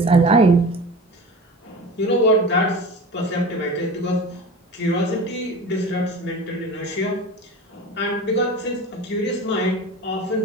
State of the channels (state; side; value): normal; both; correlation 0.34